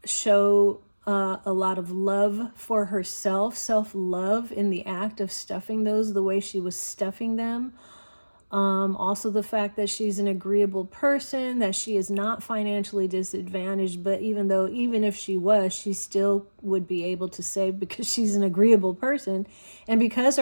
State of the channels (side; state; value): both; inverted; correlation -1.00